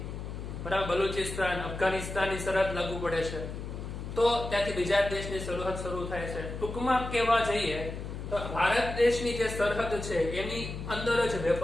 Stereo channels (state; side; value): noise; left; hum, 7 dB below the sound